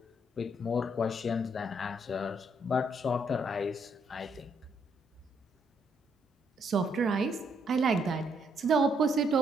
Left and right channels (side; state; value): both; normal; correlation 0.72